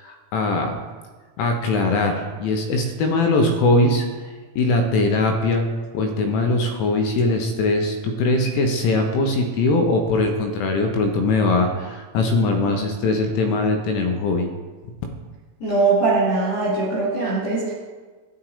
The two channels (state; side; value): late; right; 18 ms